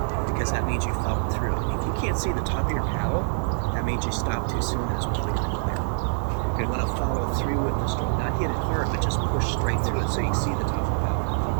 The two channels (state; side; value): silent; left; digital silence